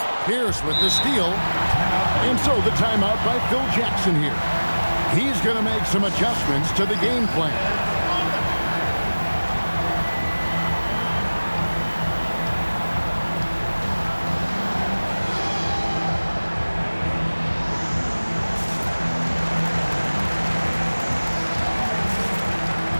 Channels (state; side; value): inverted; both; correlation -1.00